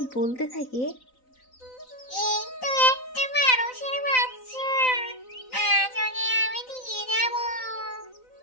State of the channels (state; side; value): late; right; 3.9 ms